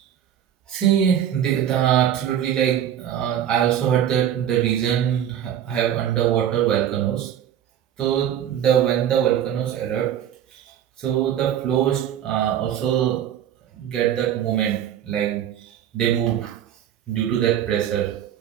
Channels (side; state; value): left; quieter; 10.2 dB